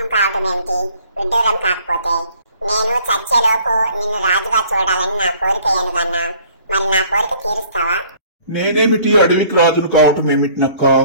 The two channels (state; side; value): inverted; both; correlation -0.55